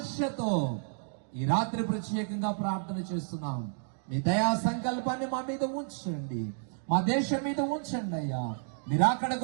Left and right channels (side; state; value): left; silent; digital silence